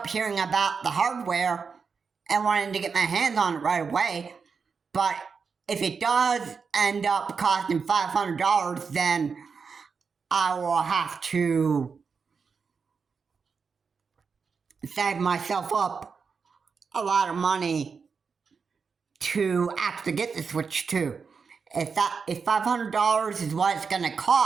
hearing about the hardware and wanting to get my hands on it right away. But if it does end up costing $500, then I will have to save myself up a lot of money to actually get the Switch 2. If $500 is what it's going to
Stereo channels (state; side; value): quieter; left; 5.5 dB